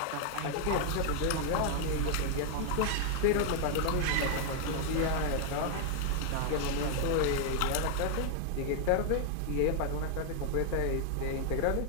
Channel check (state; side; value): different; both; correlation 0.00